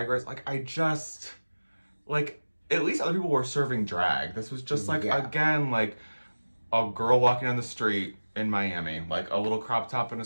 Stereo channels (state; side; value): inverted; both; correlation -1.00